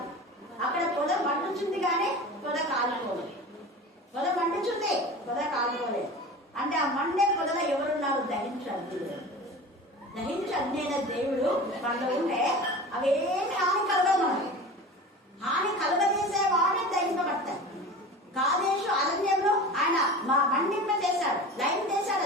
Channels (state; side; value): normal; both; correlation 0.34